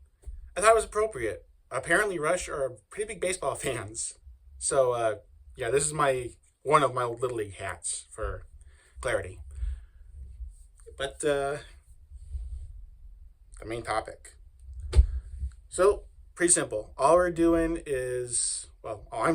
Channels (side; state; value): both; identical; correlation 1.00